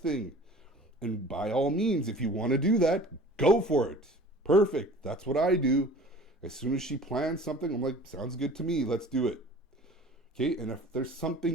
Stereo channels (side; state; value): both; normal; correlation 0.44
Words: And by all means, if you want to do that, go for it. Perfect. That's what I do. As soon as she plans something, I'm like, sounds good to me. Let's do it. Okay. And if there's